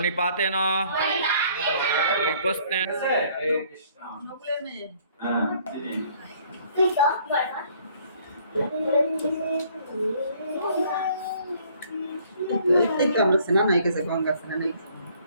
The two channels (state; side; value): inverted; both; correlation -0.60